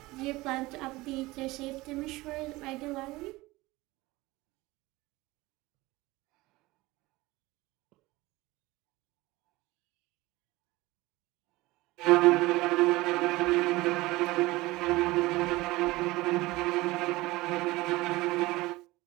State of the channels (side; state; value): left; quieter; 20.3 dB